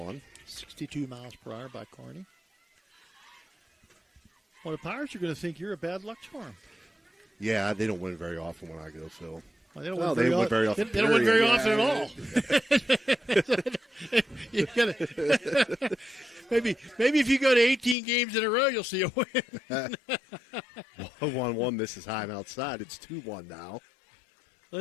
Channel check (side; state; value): right; drops out; at 17.9 s